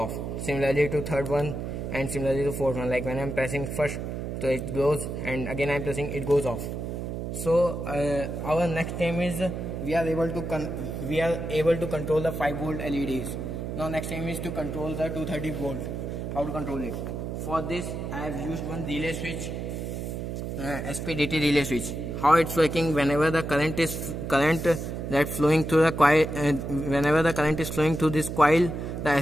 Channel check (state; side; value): noise; right; hum, 5 dB below the sound